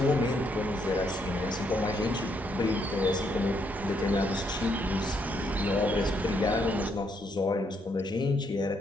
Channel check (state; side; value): normal; both; correlation 0.74